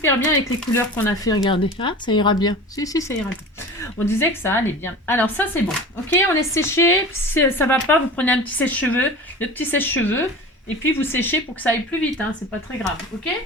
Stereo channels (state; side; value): normal; both; correlation 0.35